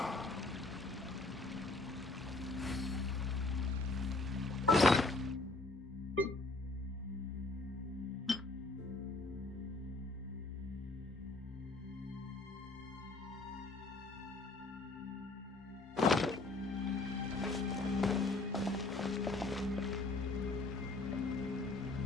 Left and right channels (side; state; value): right; quieter; 3.2 dB